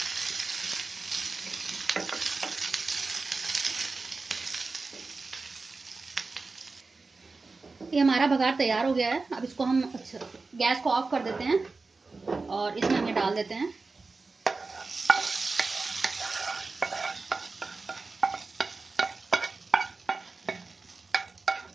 ये हमारा बघार तैयार हो गया है। अब इसको हम गैस को ऑफ कर देते हैं और इसमें हम ये डाल देते हैं।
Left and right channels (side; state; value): left; quieter; 3.9 dB